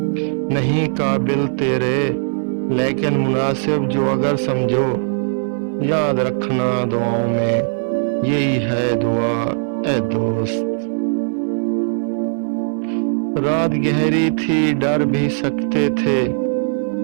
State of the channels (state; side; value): silent; left; digital silence